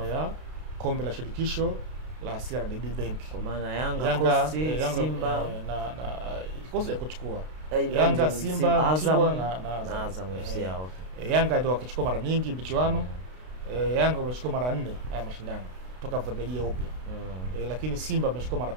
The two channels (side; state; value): left; late; 32 ms